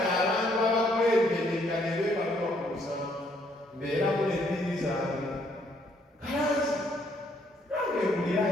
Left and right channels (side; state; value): both; normal; correlation 0.68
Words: abantu abakwembedeka ne beebalwa ku musanvu mbeeramu n'ebbiri zange kalanzi nange